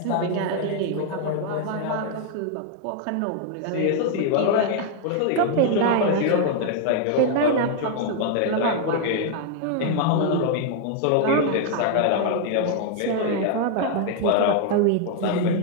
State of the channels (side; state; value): both; different; correlation 0.00